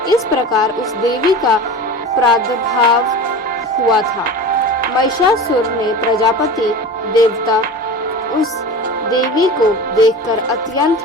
इस प्रकार उस देवी का प्रादुर्भाव हुआ था। महिषासुर ने प्रजापति देवता उस देवी को देखकर अत्यंत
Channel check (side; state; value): both; normal; correlation 0.33